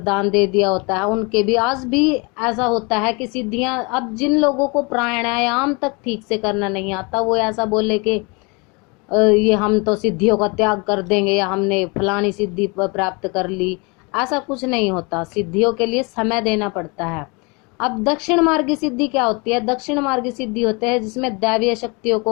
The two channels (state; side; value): quieter; right; 29.6 dB